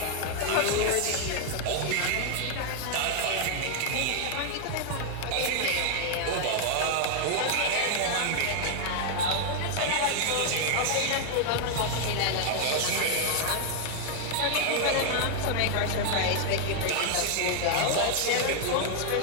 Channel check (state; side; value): different; both; correlation 0.00